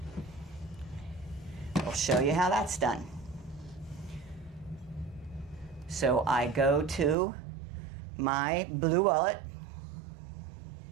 I'll show you how that's done. So I go to my Blue Wallet.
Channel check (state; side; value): drops out; left; at 7.2 s